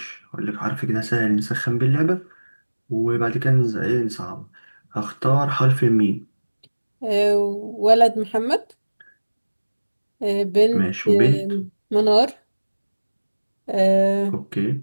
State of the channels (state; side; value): inverted; both; correlation -1.00